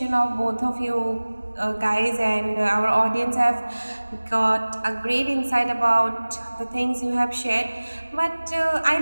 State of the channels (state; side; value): inverted; both; correlation -1.00